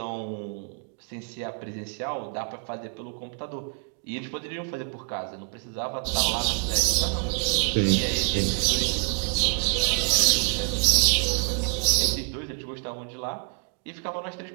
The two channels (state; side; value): quieter; left; 36.0 dB